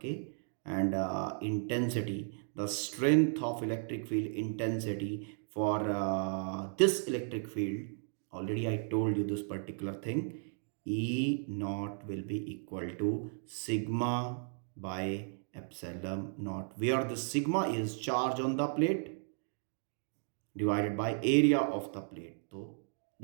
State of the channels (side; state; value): left; silent; 55 dB below the other